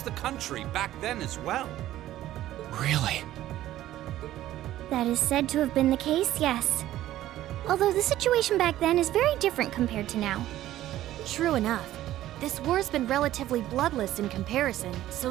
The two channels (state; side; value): quieter; left; 13.9 dB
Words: the country back then as well. Really? That is said to have been the case, yes. Although the situation back then is very different compared to now. True enough. This war's been relatively bloodless in comparison, so